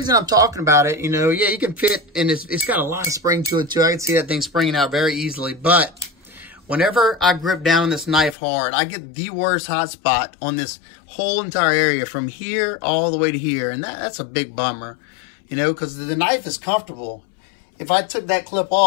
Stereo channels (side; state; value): right; drops out; at 8.3 s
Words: I'm talking about it, you know, yeah, you can fit, and it's got a lot of spring to it too. I can see that thing springing out very easily. But whenever I grip down this knife hard, I get the worst hot spot on this whole entire area from here all the way to here. And that's a big bummer, you know, because the knife is comfortable. If I took that clip